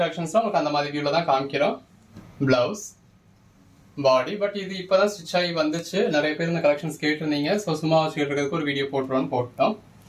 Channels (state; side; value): identical; both; correlation 1.00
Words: கலெக்ஷன்ஸ்லாம் உங்களுக்கு அந்த மாதிரி வியூவில் தான் காமிக்கிறோம். Blouse, body. பட் இது இப்போதான் ஸ்டிச் ஆகி வந்துச்சு. நிறைய பேர் இந்த கலெக்ஷன்ஸ் கேட்டிருந்தீங்க. ஸோ சும்மா வச்சுக்கிறதுக்கு ஒரு வீடியோ போட்டோம்.